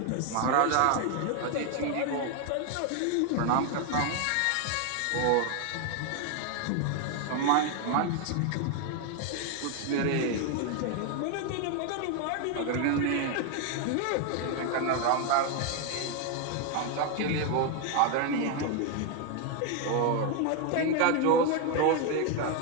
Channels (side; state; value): both; different; correlation 0.01